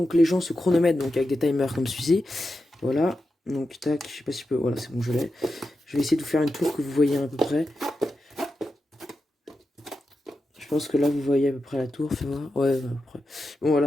les gens se chronomètrent donc, avec des timers comme celui-ci. Voilà. Donc, tac, je sais pas si je peux. Voilà, c'est bon, je l'ai. Je vais essayer de vous faire une tour que vous voyez à peu près. Je pense que là, vous voyez à peu près la tour. Fais voir. Ouais, à peu près. Bon,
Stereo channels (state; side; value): normal; both; correlation 0.89